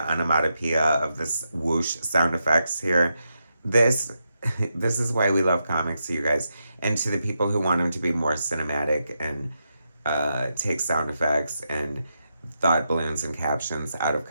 of this whoosh sound effects here. This is why we love comics, you guys. And to the people who want them to be more cinematic and take sound effects and thought balloons and captions out of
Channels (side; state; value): both; inverted; correlation -0.85